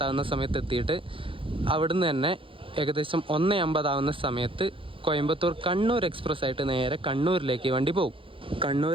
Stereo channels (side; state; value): left; late; 0.25 ms